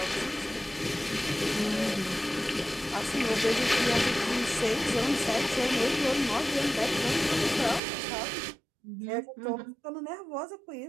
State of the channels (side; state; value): left; drops out; at 7.8 s